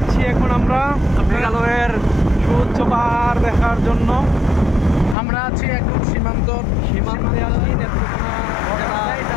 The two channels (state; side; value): drops out; right; at 5.2 s